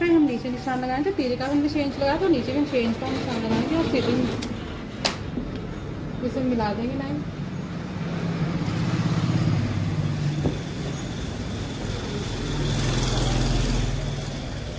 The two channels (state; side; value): identical; both; correlation 1.00